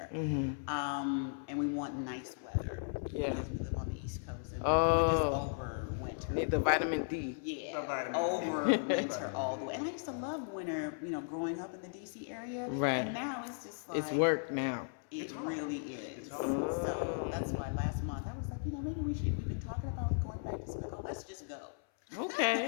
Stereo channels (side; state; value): right; silent; 54 dB below the other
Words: and we want nice weather. Yeah. Because we live on the East Coast, and Oh. we're just over winter. Need the vitamin D. Yeah, The vitamin. over winter all the way. And I used to love winter, growing up in the DC area. Right. And now it's just like It's work now. it really is. hard. So that's why last month I was like, maybe we've been talking about going back to Senegal. Let's just go. Okay.